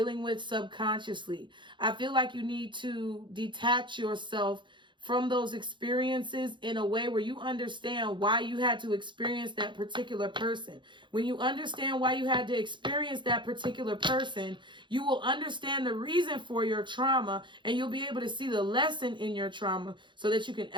with subconsciously. I feel like you need to detach yourself from those experiences in a way where you understand why you had to experience that particular person. When you understand why you had to experience that particular person, you will understand the reason for your trauma, and you'll be able to see the lesson in your trauma so that you can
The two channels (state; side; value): late; left; 0.23 ms